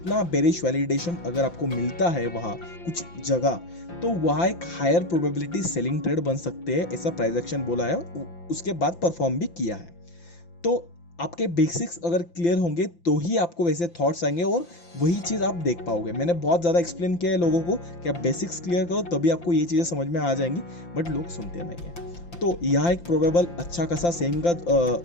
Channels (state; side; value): late; right; 5.8 ms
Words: बेरिश वैलिडेशन अगर आपको मिलता है वहाँ कुछ जगह, तो वहाँ एक हायर प्रोबेबिलिटी सेलिंग ट्रेड बन सकते हैं, ऐसा प्राइस एक्शन बोला है, उसके बाद परफॉर्म भी किया है। तो आपके बेसिक्स अगर क्लियर होंगे तो ही आपको वैसे थॉट्स आएंगे और वही चीज़ आप देख पाओगे। मैंने बहुत ज़्यादा एक्सप्लेन किया है लोगों को कि आप बेसिक्स क्लियर करो तभी आपको ये चीज़ें समझ में आ जाएंगी, बट लोग सुनते नहीं हैं। तो यहाँ एक प्रोबेबल अच्छा खासा